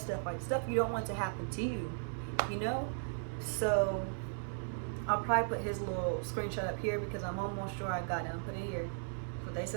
like stuff you don't want to happen to you, you know? So I'll probably put his little screenshot up here because I'm almost sure I got him. Put it here. That's what they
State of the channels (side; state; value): left; silent; 53 dB below the other